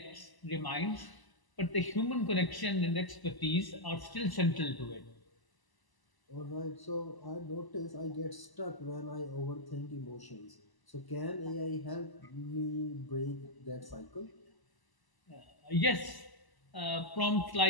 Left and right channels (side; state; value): right; late; 1.0 ms